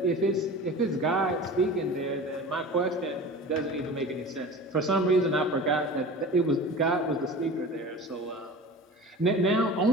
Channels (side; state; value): both; normal; correlation 0.36